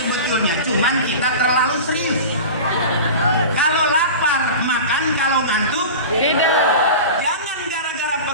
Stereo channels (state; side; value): inverted; both; correlation -0.32